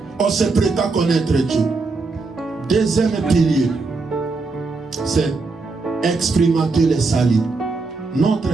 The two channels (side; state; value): left; quieter; 3.9 dB